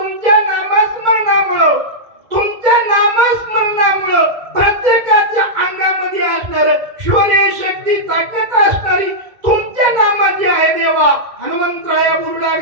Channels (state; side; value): late; left; 2.0 ms